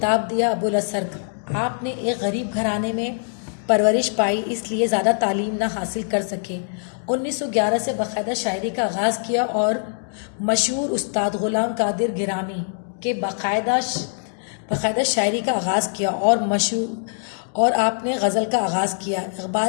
دیا ابو الاثر کا۔ آپ نے ایک غریب گھرانے میں پرورش پائی، اس لیے زیادہ تعلیم نہ حاصل کر سکے۔ 1911 سے باقاعدہ شاعری کا آغاز کیا اور مشہور استاد غلام قادر گیلانی کے باقاعدہ شاعری کا آغاز کیا اور آپ نے غزل کا آغاز کیا۔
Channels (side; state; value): right; silent; digital silence